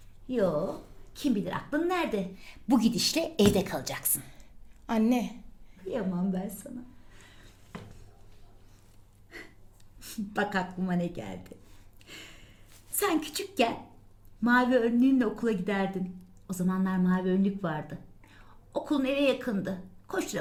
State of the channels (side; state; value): both; identical; correlation 1.00